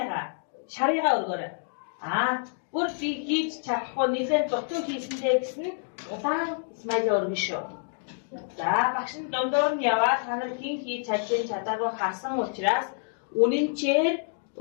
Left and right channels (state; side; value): silent; right; digital silence